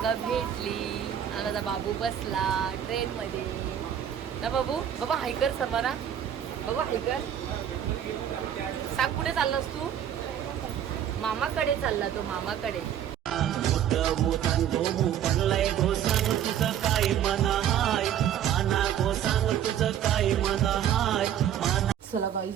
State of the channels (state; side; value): quieter; left; 9.9 dB